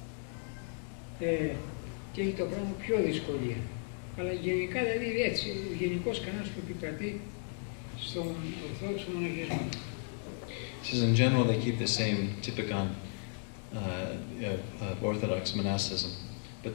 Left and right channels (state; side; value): silent; right; 54 dB below the other